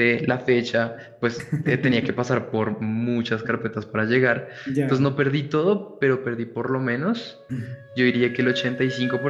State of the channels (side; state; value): both; identical; correlation 1.00